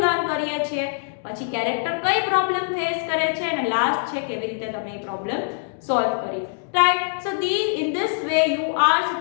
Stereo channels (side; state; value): right; silent; digital silence